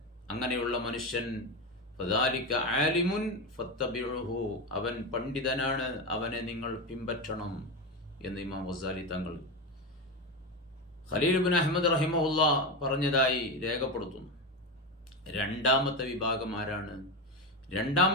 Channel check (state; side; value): normal; both; correlation 0.16